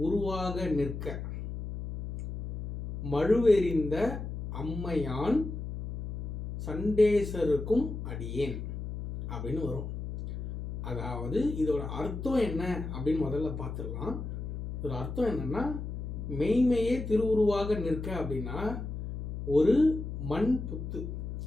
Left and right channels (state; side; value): noise; left; hum, 6 dB below the sound